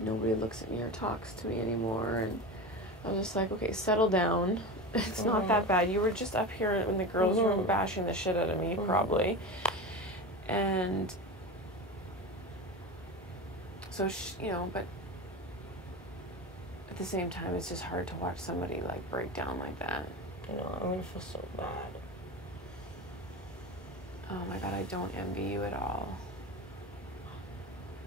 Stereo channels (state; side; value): normal; both; correlation 0.26